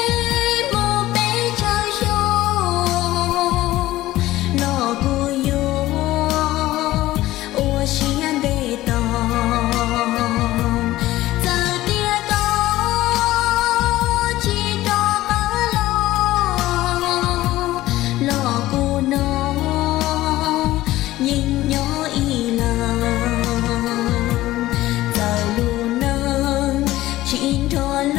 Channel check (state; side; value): quieter; right; 16.2 dB